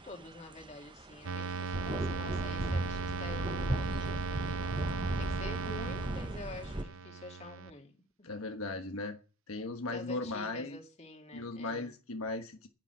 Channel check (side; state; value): both; normal; correlation 0.47